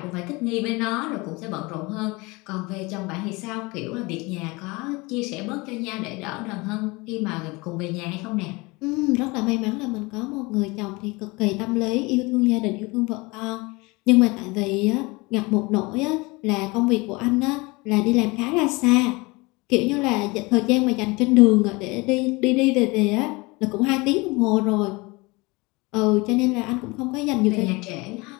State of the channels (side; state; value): right; quieter; 24.8 dB